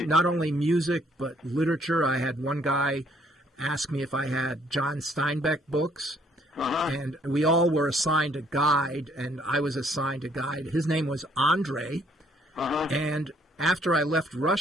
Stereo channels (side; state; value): both; normal; correlation 0.65